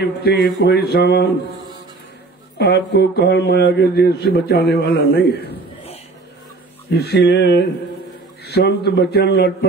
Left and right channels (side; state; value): left; quieter; 3.6 dB